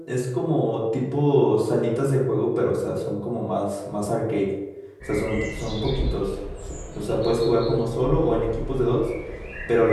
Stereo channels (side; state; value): both; identical; correlation 1.00